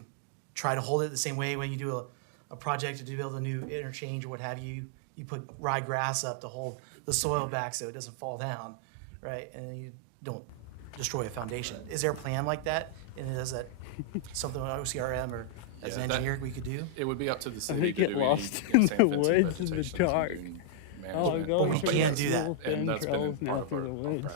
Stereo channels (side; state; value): both; different; correlation -0.01